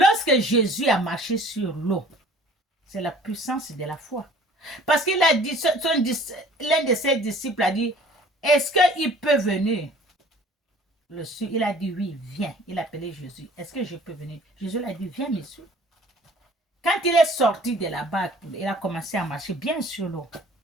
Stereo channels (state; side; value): normal; both; correlation 0.51